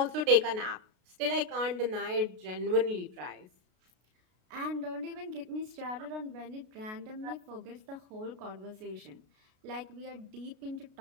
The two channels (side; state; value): left; late; 33 ms